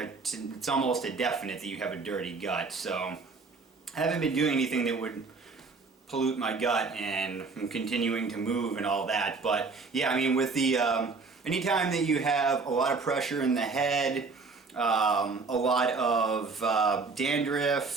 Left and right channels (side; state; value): left; quieter; 4.3 dB